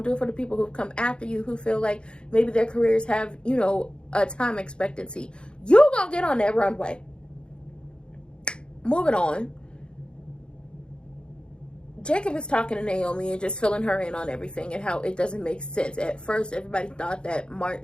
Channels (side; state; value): right; late; 0.053 ms